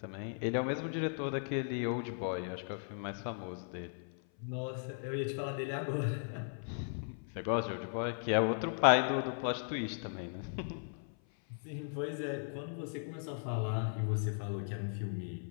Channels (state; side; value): silent; right; 53 dB below the other